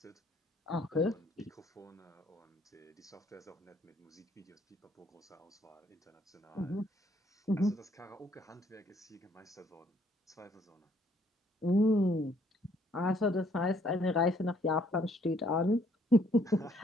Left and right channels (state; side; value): normal; both; correlation 0.65